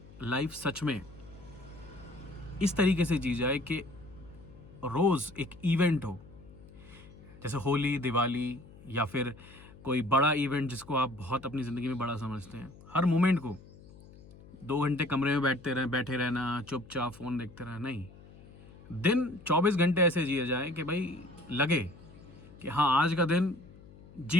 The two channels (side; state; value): left; noise; hum, 21 dB below the sound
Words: लाइफ सच में इस तरीके से जी जाए कि रोज़ एक इवेंट हो, जैसे होली, दिवाली या फिर कोई बड़ा इवेंट जिसको आप बहुत अपनी ज़िंदगी में बड़ा समझते हैं। हर मोमेंट को 2 घंटे कमरे में बैठे रहना, चुपचाप फ़ोन देखते रहना नहीं। दिन 24 घंटे ऐसे जिए जाए कि भाई लगे कि हाँ आज का दिन